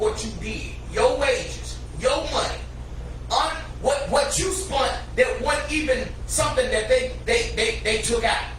you did, your wages, your money, what you spent that wasn't even something that they took out.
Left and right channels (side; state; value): both; identical; correlation 1.00